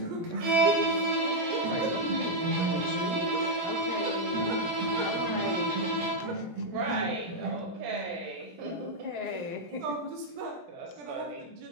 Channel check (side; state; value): left; late; 17 ms